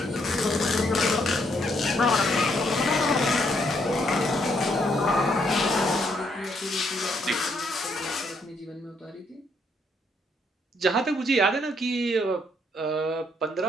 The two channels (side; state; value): both; normal; correlation 0.72